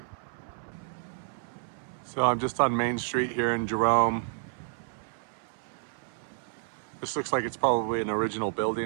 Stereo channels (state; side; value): silent; left; 58 dB below the other